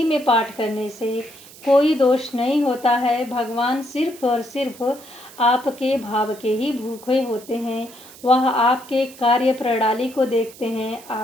में पाठ करने से कोई दोष नहीं होता है। भगवान सिर्फ और सिर्फ आपके भाव के ही भूखे होते हैं। वह आपके कार्य प्रणाली को देखते हैं,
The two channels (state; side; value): noise; right; hiss, 20 dB below the sound